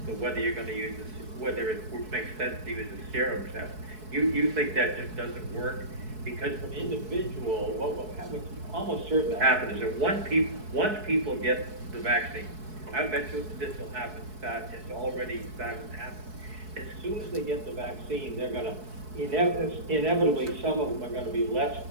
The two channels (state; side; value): late; left; 4.7 ms